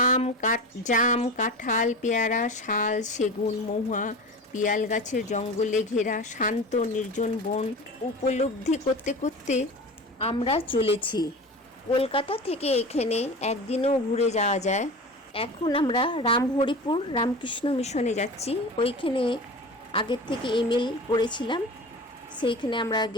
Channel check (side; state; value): both; normal; correlation 0.32